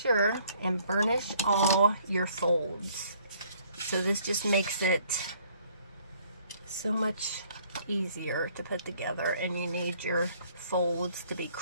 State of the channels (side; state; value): both; inverted; correlation -0.61